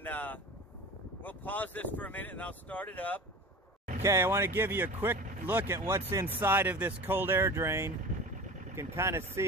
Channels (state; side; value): normal; both; correlation 0.35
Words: we'll pause this for a minute and I'll start it up. Okay, I want to give you a quick look at what's inside of this cold air drain. You can kind of